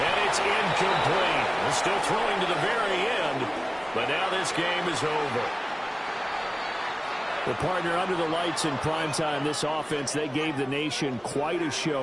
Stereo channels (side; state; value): both; identical; correlation 1.00